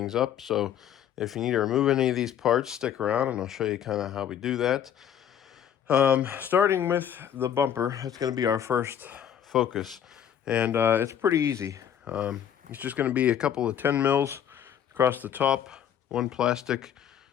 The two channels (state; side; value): quieter; right; 9.4 dB